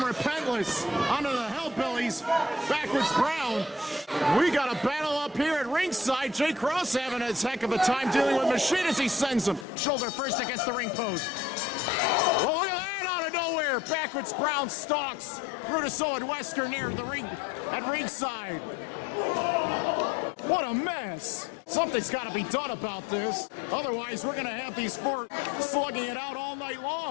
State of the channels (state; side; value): drops out; right; at 9.7 s